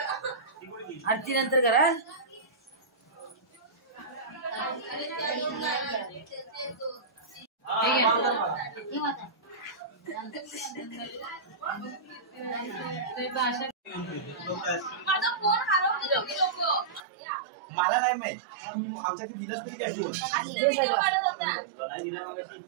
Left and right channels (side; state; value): left; drops out; at 17.0 s